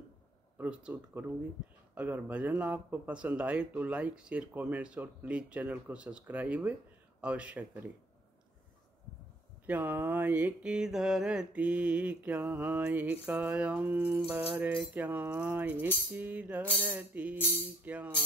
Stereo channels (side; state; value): both; normal; correlation 0.63